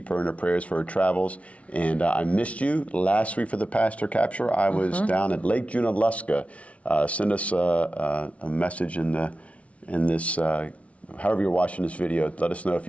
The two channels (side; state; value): right; late; 0.064 ms